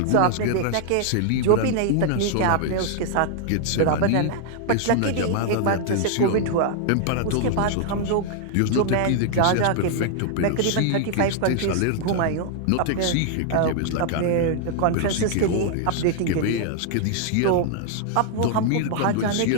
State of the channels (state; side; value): different; both; correlation 0.00